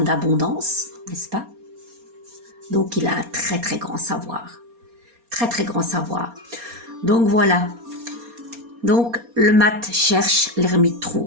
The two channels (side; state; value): left; late; 4.2 ms